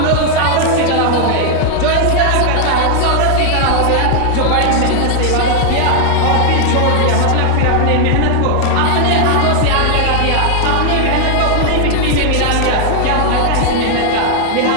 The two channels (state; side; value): different; both; correlation 0.00